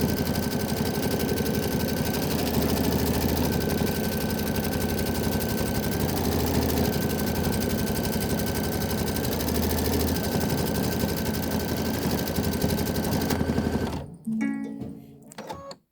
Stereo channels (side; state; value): both; identical; correlation 1.00